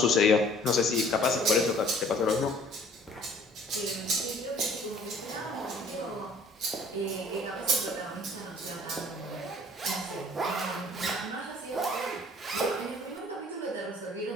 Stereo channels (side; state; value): both; normal; correlation 0.54